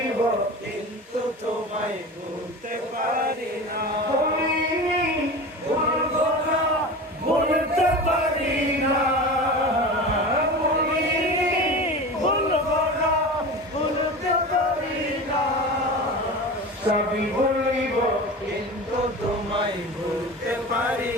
কিন্তু তোমায় ভুলতে পারি না। ভুলবো না, ভুলতে পারি না। ভুলবো না, ভুলতে পারি না। সবই বলিব কিন্তু তোমায় ভুলতে পারি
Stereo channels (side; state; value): both; normal; correlation 0.31